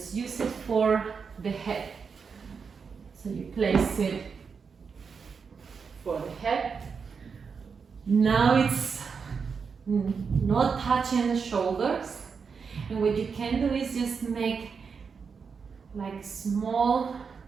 use it for the head. So you place it for the head. Now it's not touching the shoulders. And what you can do is just make like small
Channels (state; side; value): quieter; left; 5.7 dB